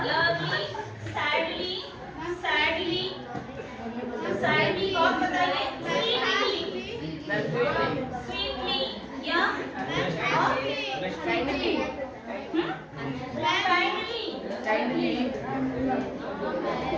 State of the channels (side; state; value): both; identical; correlation 1.00